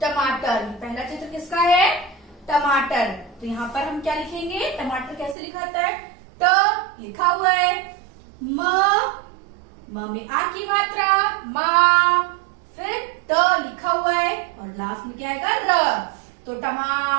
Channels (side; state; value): left; drops out; at 5.4 s